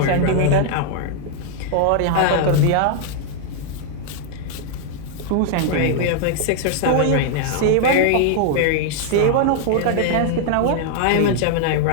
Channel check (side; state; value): both; different; correlation 0.00